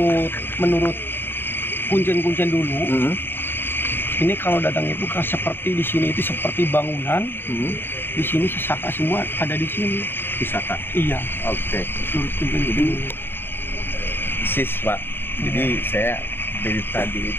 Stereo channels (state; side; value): late; right; 0.10 ms